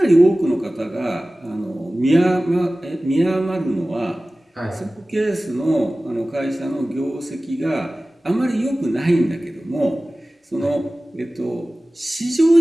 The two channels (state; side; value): normal; both; correlation 0.97